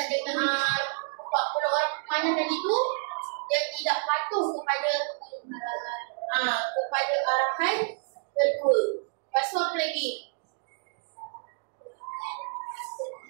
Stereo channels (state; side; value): silent; left; 59 dB below the other